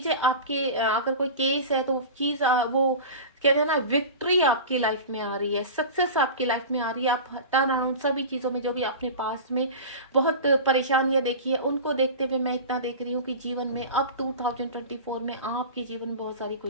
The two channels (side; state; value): both; inverted; correlation -0.31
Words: आपके अगर कोई केस है तो चीज वो कहते हैं ना विक्ट्री आपकी लाइफ में आ रही है, सक्सेस आपकी लाइफ में आ रही है। आप टर्न अराउंड सभी चीजों में जो भी अपने पास में बहुत परेशानियां देखी है उनको देखते हुए मैं इतना देख रही हूँ कि जीवन में अब 2024 में आपके जीवन में बहुत सारी